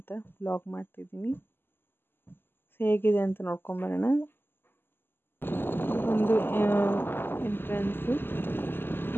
ವ್ಲಾಗ್ ಮಾಡ್ತಿದ್ದೀನಿ. ಹೇಗಿದೆ ಅಂತ ನೋಡ್ಕೊಂಬರೋಣ. ಒಂದು ಎಂಟ್ರೆನ್ಸು,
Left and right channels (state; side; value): late; right; 0.10 ms